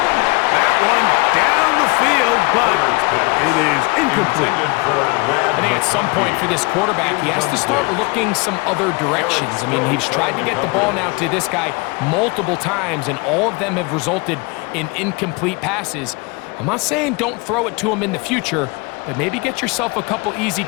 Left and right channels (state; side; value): quieter; right; 27.3 dB